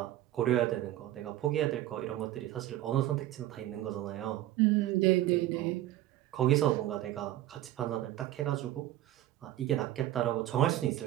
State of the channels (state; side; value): quieter; left; 14.2 dB